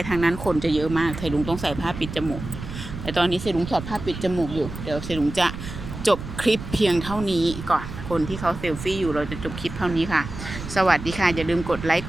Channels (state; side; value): noise; right; rumble, 10 dB below the sound